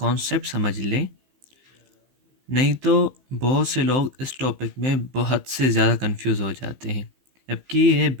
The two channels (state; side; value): late; left; 15 ms